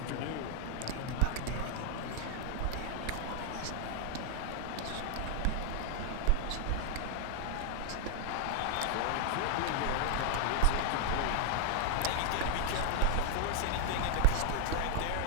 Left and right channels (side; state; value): both; different; correlation 0.00